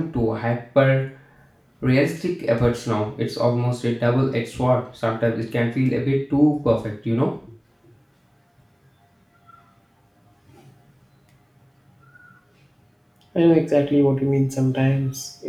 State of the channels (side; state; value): both; identical; correlation 1.00